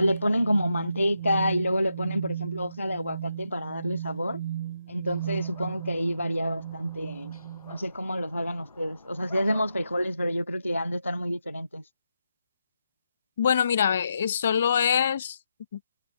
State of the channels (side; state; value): both; inverted; correlation -0.83